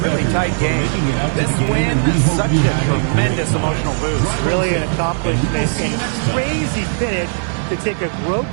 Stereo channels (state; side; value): silent; left; digital silence